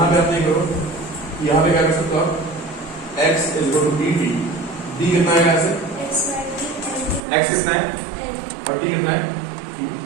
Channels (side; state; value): left; drops out; at 7.2 s